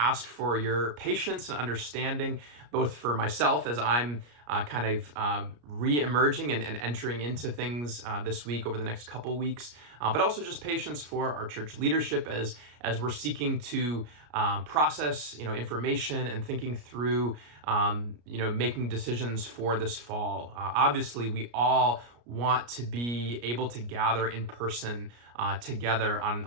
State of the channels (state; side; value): late; left; 34 ms